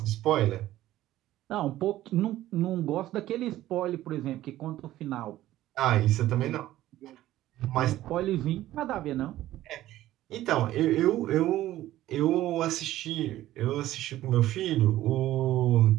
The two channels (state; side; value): quieter; left; 14.5 dB